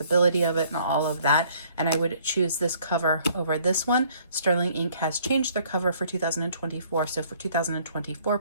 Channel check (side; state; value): both; inverted; correlation -0.60